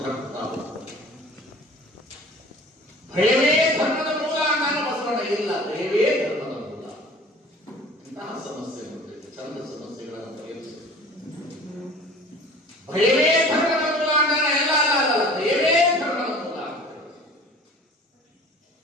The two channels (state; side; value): normal; both; correlation 0.45